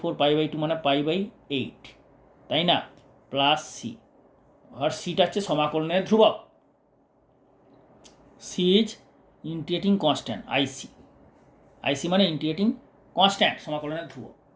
π/2 মানে π/8, তাই না? প্লাস সি, আর সিটা হচ্ছে সমাকলনের ধ্রুবক, সি ইজ ইন্টিগ্রেটিং কনস্ট্যান্ট, আইসি মানে ইন্টিগ্রেটিং কনস্ট্যান্ট, সমাকলনের ধ্রুবক।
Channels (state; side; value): identical; both; correlation 1.00